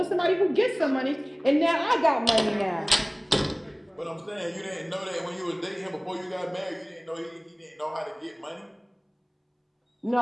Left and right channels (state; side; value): identical; both; correlation 1.00